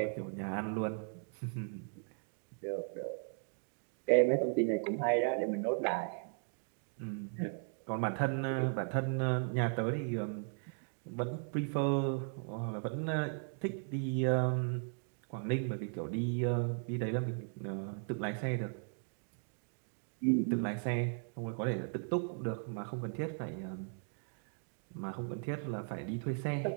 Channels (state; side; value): silent; left; 53 dB below the other